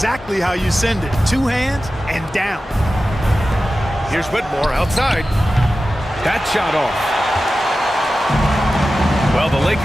how you send it. 2 hands and down. Here's Whitmore outside. That shot off. Well, the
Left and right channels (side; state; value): both; normal; correlation 0.94